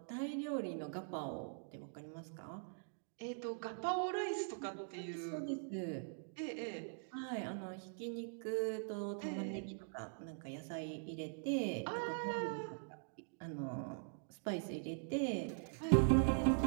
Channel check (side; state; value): left; silent; digital silence